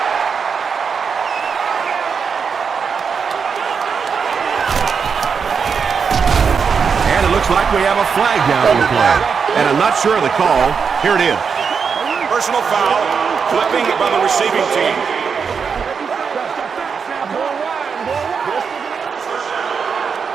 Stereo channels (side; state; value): left; quieter; 6.1 dB